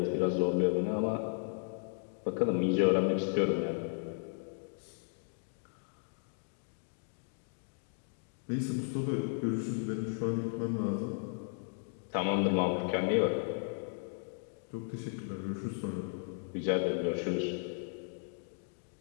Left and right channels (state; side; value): silent; right; 54 dB below the other